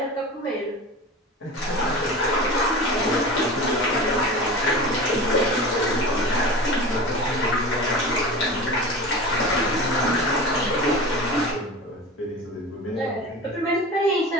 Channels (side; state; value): both; normal; correlation 0.32